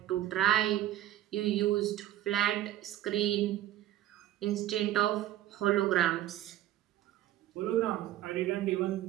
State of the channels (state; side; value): quieter; left; 13.5 dB